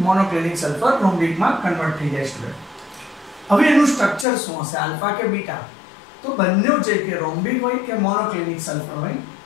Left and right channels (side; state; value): right; drops out; at 4.2 s